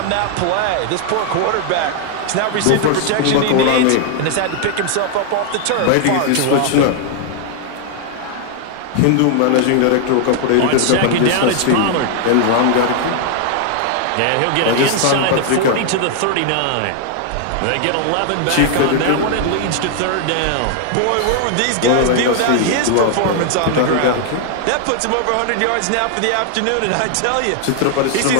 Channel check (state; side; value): different; both; correlation 0.00